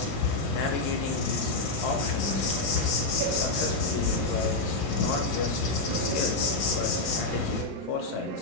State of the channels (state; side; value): quieter; right; 3.1 dB